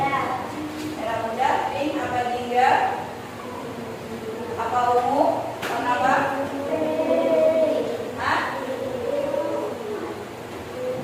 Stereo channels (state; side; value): identical; both; correlation 1.00